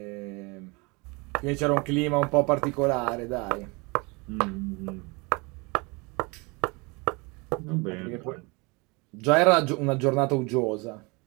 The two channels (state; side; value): quieter; left; 28.0 dB